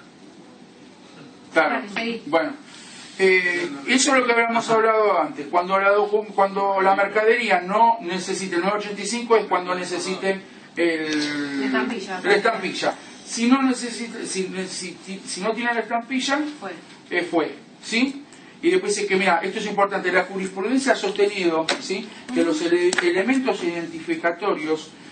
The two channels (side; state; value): both; identical; correlation 1.00